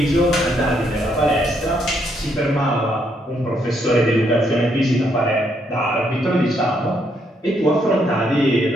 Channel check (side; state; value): both; normal; correlation 0.74